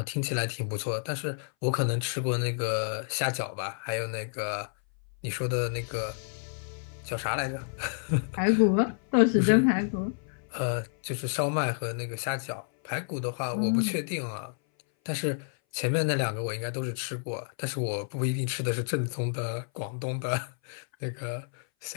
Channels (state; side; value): silent; right; 58 dB below the other